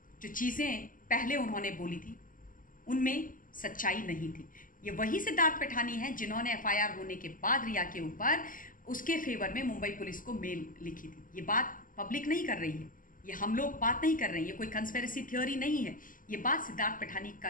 जो चीज़ें पहले उन्होंने बोली थी उनमें सच्चाई नहीं थी। ये वही सिद्धार्थ पैठानी हैं जिन्होंने एफआईआर होने के बाद रिया के ऊपर उसके फेवर में मुंबई पुलिस को मेल लिखी थी। ये बात पब्लिक नहीं कर रही है, ये हम लोग बात नहीं कर रहे हैं, ये कोई कंस्पिरेसी थ्योरी नहीं है, ये बात सिद्धार्थ पैठानी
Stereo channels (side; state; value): right; late; 0.39 ms